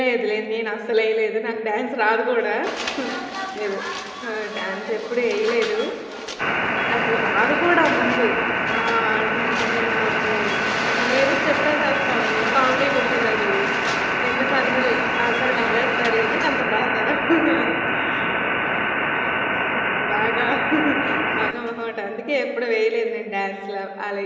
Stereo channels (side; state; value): both; identical; correlation 1.00